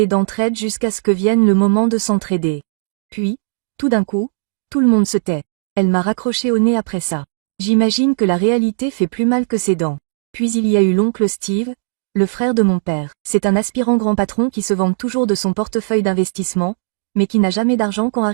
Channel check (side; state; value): left; silent; digital silence